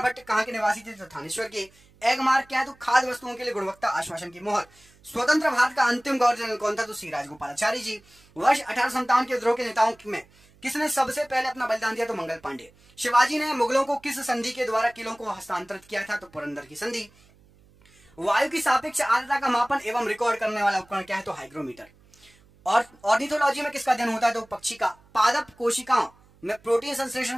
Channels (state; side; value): noise; right; hum, 29 dB below the sound